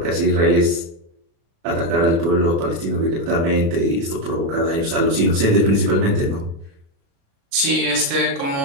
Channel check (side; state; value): left; late; 36 ms